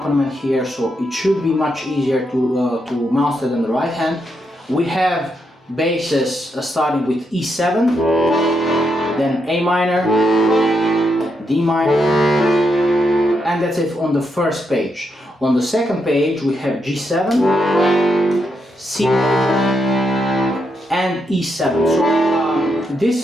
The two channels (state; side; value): normal; both; correlation 0.81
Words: here, so it should be much easier to master than the right hand. We have basses starting with E7, then A minor, D minor, and that's it on the first page. On the second page we have G7, C major, and E7. So